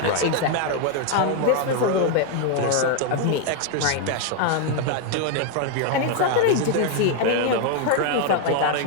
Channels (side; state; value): both; different; correlation 0.00